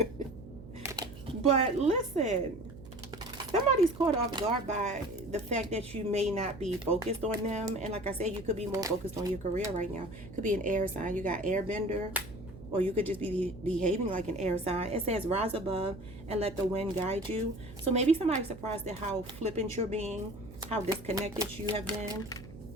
But listen, somebody's caught off guard by the fact that you may not be focused on them. And like I said, you could be more focused on your career right now. Could be an air sign. You got airbender, or you could just be behaving like an air sign. It says rise above and let the wind guide you. So maybe somebody's surprised at how flippant you're being, how disconnected you have been,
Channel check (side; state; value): right; noise; hum, 16 dB below the sound